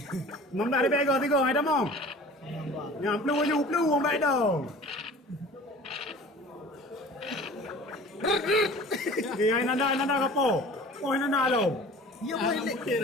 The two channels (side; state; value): both; normal; correlation 0.43